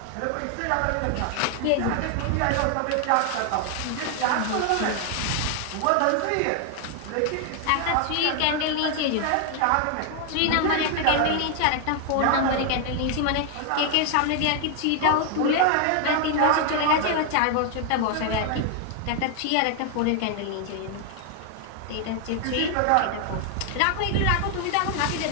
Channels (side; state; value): both; different; correlation 0.00